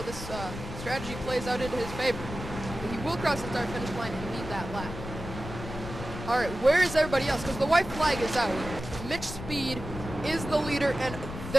this strategy plays out into his favor. But he will cross the start-finish line and lead that lap. All right, where is everybody else? Because the white flag is out. Mitch Speed is the leader, and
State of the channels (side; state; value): left; noise; rumble, 9 dB below the sound